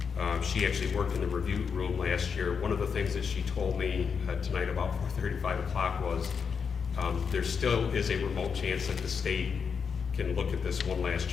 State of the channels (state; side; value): quieter; right; 6.2 dB